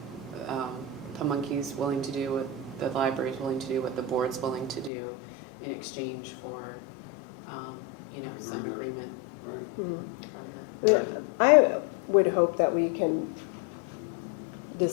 Pamunkey's willing to do, what the library's willing to do, what the board's willing to do in exchange for, some agreement Right. from them. I would hope that we can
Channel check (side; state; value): right; drops out; at 4.9 s